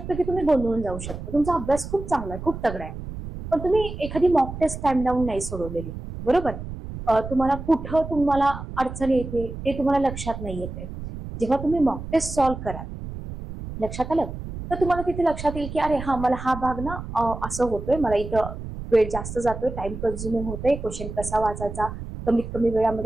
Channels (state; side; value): noise; right; rumble, 9 dB below the sound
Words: की तुम्ही गोंधळून जाऊ शकता. तुमचा अभ्यास खूप चांगला आहे, खूप तगडा आहे, पण तुम्ही एखादी मॉक टेस्ट टाइम डाऊन नाही सोडवलेली, बरोबर. तुम्हाला कुठं तुम्हाला अडचण येते ते तुम्हाला लक्षात नाही येते. जेव्हा तुम्ही मॉक टेस्ट सॉल्व्ह कराल, लक्षात आलं, तर तुम्हाला तिथे लक्षात येईल की अरे हा मला हा भाग ना असं होतोय, मला इथं वेळ जास्त जातोय, टाइम कन्झ्युमिंग होतोय, क्वेश्चन कसा वाचायचा, कमीत कमी